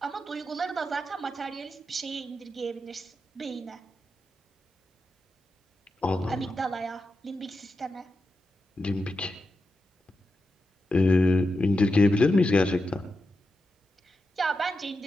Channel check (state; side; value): normal; both; correlation 0.88